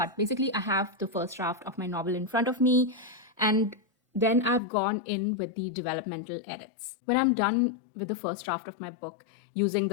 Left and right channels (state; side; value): drops out; right; at 4.6 s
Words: basically, I have the first draft of my novel in front of me, and then I've gone in with the developmental edits. When I'm done with the first draft of my book using